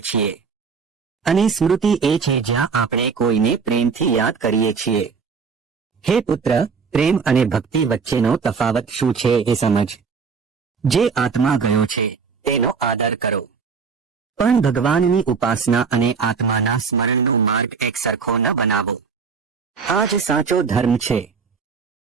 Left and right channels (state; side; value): quieter; left; 5.5 dB